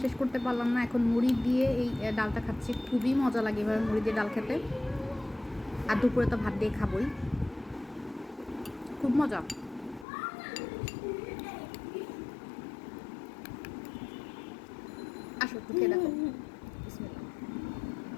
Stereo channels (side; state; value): right; drops out; at 10.1 s